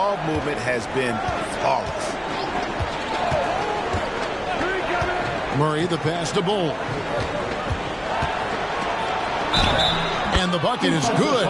movement has been flawless. Murray, the pass to Bull. And the bucket is good.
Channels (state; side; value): identical; both; correlation 1.00